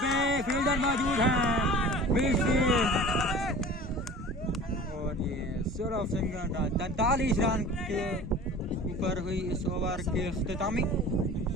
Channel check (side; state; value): both; normal; correlation 0.40